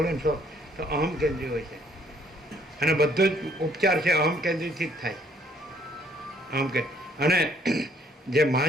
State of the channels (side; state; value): both; normal; correlation 0.64